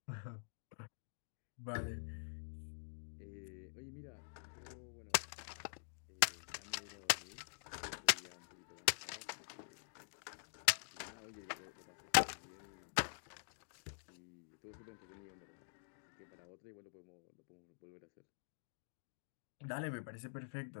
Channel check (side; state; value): right; silent; digital silence